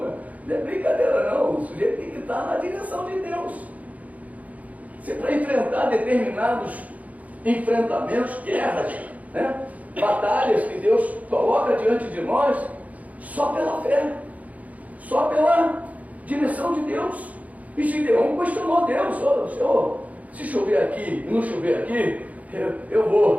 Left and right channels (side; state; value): left; late; 0.072 ms